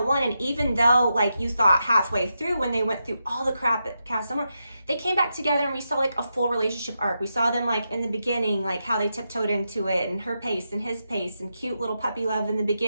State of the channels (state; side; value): inverted; both; correlation -0.86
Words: won, and even though like you thought halfway through when they went through all the crap at Casa Amor, they came back together and we saw like a full relationship arc. We saw them like in the beginning, like how they tiptoed into it, and her pace and his pace, and cute little puppy love in the